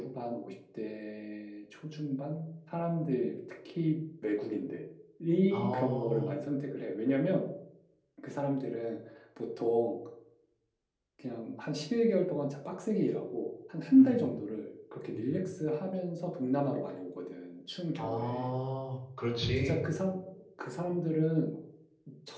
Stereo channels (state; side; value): identical; both; correlation 1.00